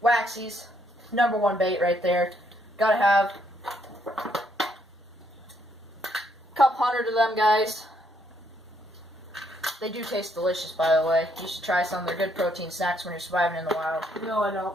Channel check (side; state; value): both; normal; correlation 0.72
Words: waxies, #1 bait right there. Gotta have a couple hundred of them, guys. They do taste delicious, by the way. You should try some. They're good protein snacks when you're surviving in the wild. No, I